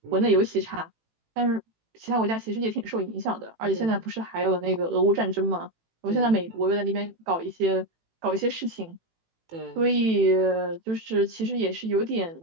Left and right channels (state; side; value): late; left; 18 ms